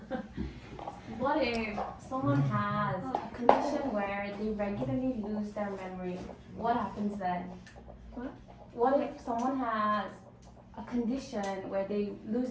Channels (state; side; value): identical; both; correlation 1.00